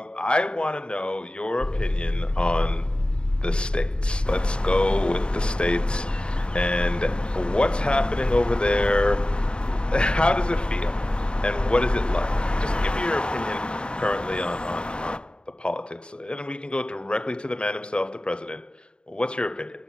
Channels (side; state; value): right; late; 0.051 ms